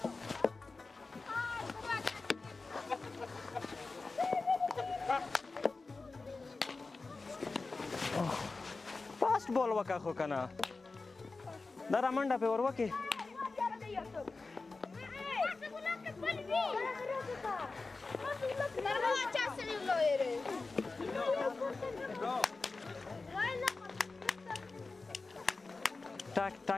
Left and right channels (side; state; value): right; quieter; 3.8 dB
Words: فاست بال وکه خو کنه دا را منډه پې ور وکې